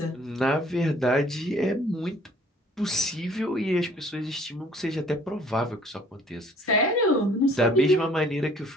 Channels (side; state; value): both; normal; correlation 0.56